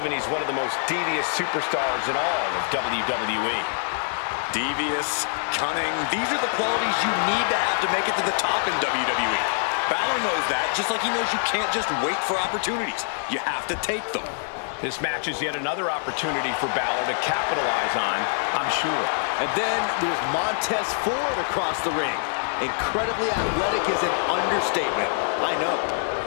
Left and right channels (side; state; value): right; silent; digital silence